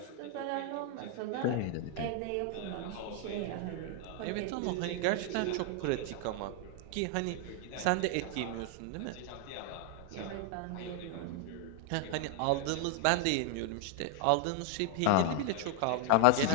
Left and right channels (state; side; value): different; both; correlation 0.00